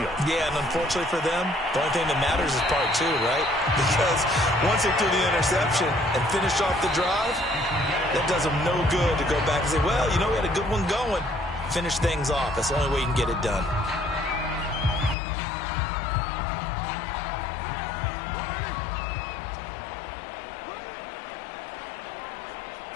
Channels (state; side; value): drops out; right; at 15.2 s